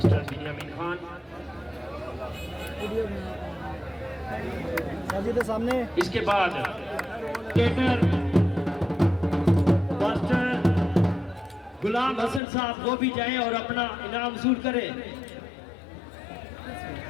बिन्यामीन खान सामने इसके बाद केटर मास्टर गुलाम हसन साहब वो भी जाएं और अपना इनाम वसूल करें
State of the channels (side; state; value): right; drops out; at 12.4 s